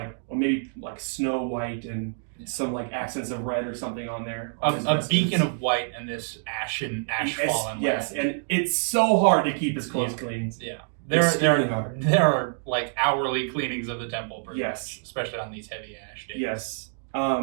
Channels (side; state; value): left; silent; digital silence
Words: or maybe like snow white and some like accents of red or something on there. A beacon of white and this ash fallen. Yes, and it's so hard to keep his clothes clean. Yeah. Hard. There are like hourly cleanings of the temple, pretty yes, much, especially on these heavy ash days. Yes.